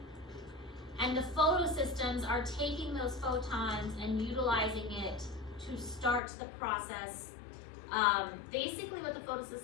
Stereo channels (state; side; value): drops out; right; at 6.2 s